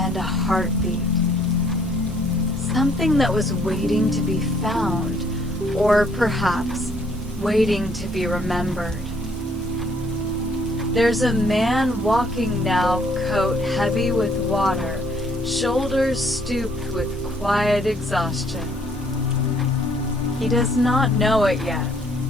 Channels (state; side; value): normal; both; correlation 0.64